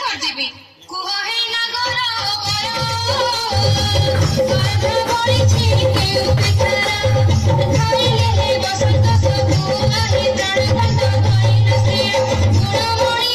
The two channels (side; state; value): both; identical; correlation 1.00